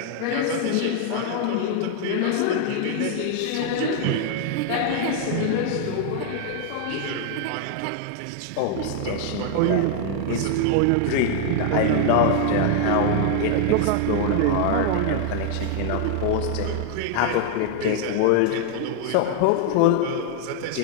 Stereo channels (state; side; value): different; both; correlation 0.00